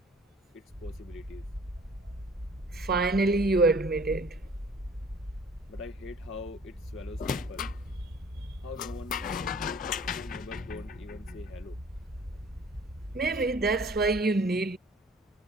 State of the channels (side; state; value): both; normal; correlation 0.52